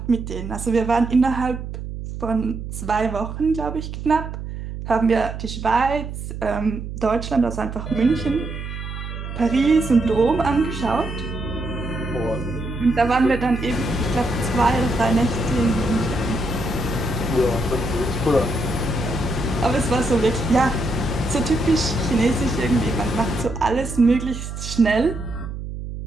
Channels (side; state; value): right; noise; hum, 8 dB below the sound